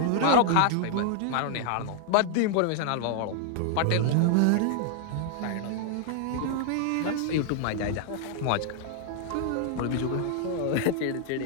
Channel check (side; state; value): both; different; correlation -0.01